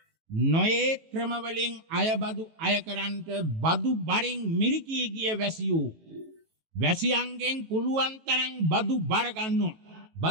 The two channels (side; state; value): left; late; 18 ms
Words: නොයේ ක්‍රමවලින් අයබදු අය කරන්ට බදු බරින් මිරිකී ගිය වැසියෝ වැසියන්ගෙන් පුළුවන් තරම් බදු බර ගන්නවා.